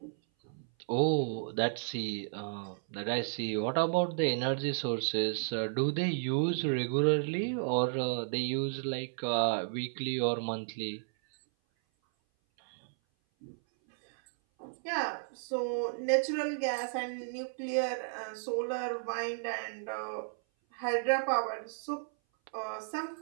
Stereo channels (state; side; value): silent; left; 56 dB below the other